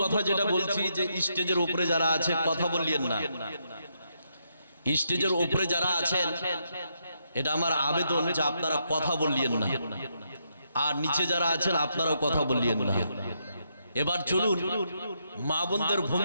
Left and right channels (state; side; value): inverted; both; correlation -0.79